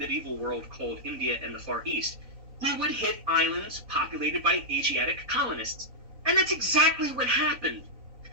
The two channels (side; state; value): left; late; 3.9 ms